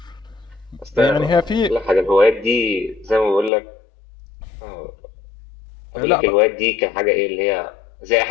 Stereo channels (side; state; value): right; drops out; at 3.5 s